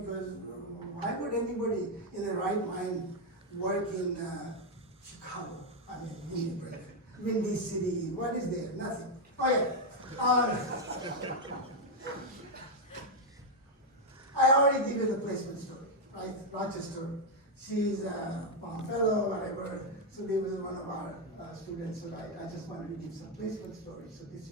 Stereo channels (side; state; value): both; normal; correlation 0.02